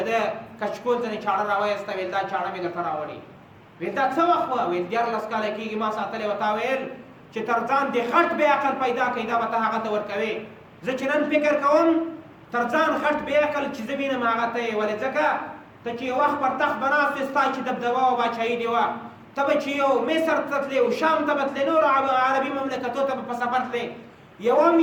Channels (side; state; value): both; identical; correlation 1.00